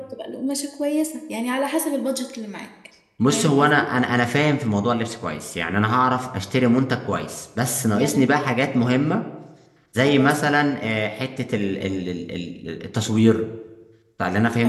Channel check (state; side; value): identical; both; correlation 1.00